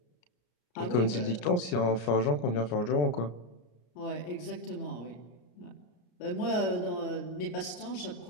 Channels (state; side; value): late; right; 33 ms